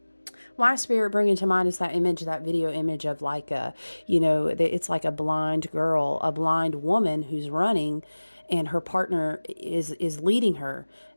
My spirit bringing to mind is that image, that video image of like it's like a blind girl, a blind woman who's running and her partner is leading her.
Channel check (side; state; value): both; inverted; correlation -1.00